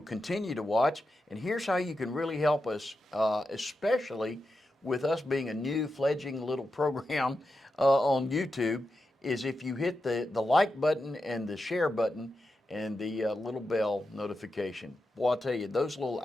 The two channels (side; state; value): both; normal; correlation 0.89